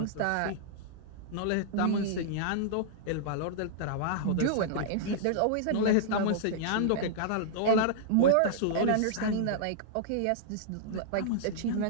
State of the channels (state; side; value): different; both; correlation -0.01